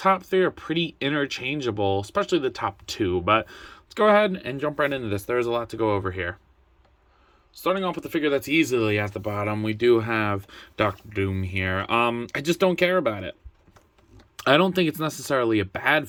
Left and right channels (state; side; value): identical; both; correlation 1.00